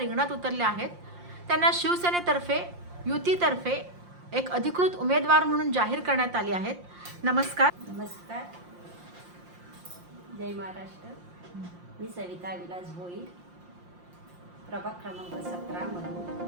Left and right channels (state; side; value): late; left; 5.7 ms